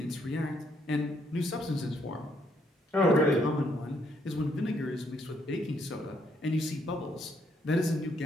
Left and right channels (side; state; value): both; normal; correlation 0.72